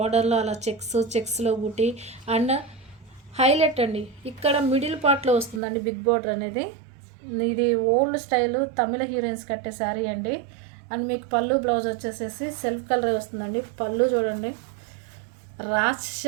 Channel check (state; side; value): drops out; left; at 5.6 s